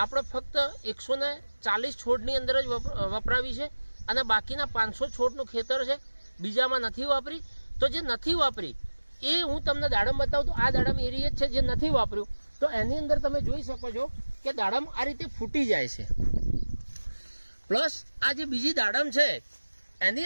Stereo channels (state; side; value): inverted; both; correlation -1.00